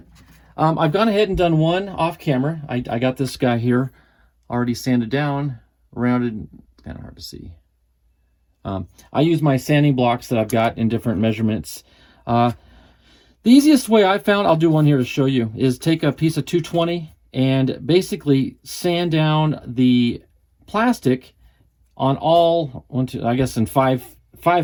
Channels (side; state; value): both; identical; correlation 1.00